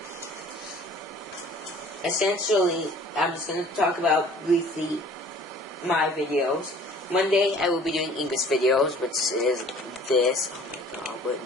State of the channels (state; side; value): normal; both; correlation 0.51